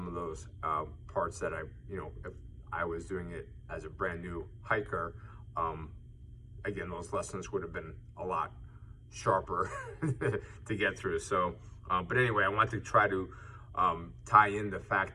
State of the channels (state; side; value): identical; both; correlation 1.00